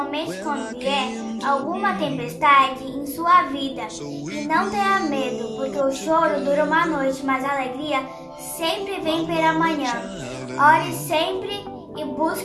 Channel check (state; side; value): identical; both; correlation 1.00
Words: quando vier alguma tempestade em sua vida e não tenha medo, porque o choro dura uma noite, mas a alegria sempre vem pela manhã. Ore sempre e